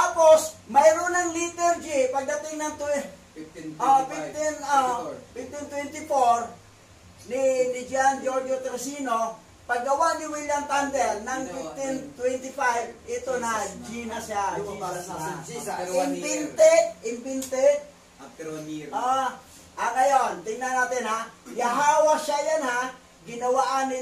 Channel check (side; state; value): both; identical; correlation 1.00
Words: mayroon ng letter G. Pagdating ng 1524, ni Gian Giorgio Teresino, paggawa ni William Tyndale ng 1525, ito na, G na siya. Invented. After 1 year. Ngayon, tingnan natin ha. Yahawashai yan ha. Ginawaan